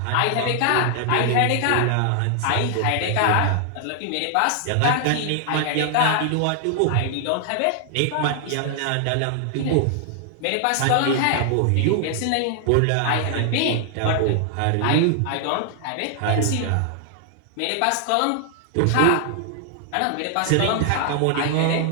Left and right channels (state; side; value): different; both; correlation 0.00